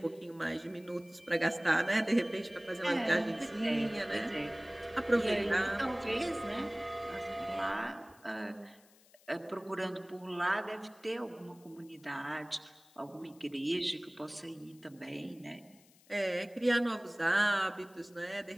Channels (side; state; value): left; noise; hiss, 28 dB below the sound